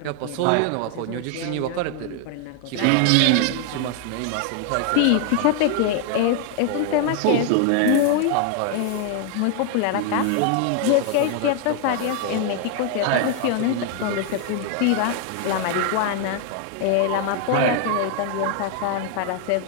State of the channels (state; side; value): different; both; correlation 0.00